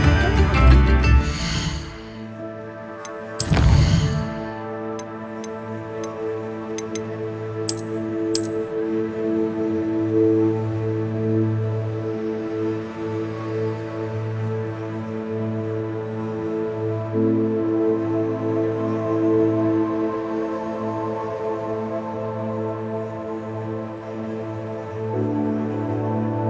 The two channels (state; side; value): identical; both; correlation 1.00